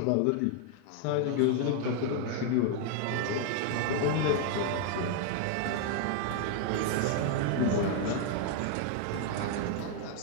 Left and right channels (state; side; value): different; both; correlation 0.00